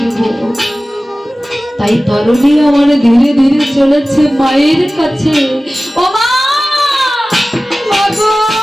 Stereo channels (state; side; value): normal; both; correlation 0.96